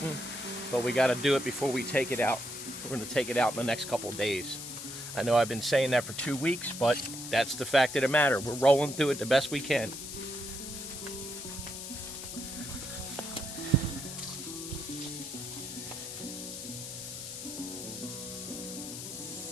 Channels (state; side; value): noise; left; hiss, 8 dB below the sound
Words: but we got to do it before we take it out. We're going to take it out in the next couple of days. I know I've been saying that for 2 weeks, but that's the fact of the matter. We're rolling through it the best we can.